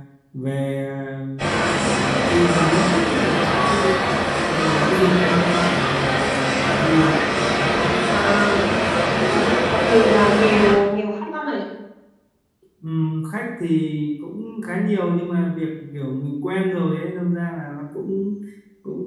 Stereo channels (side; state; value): both; identical; correlation 1.00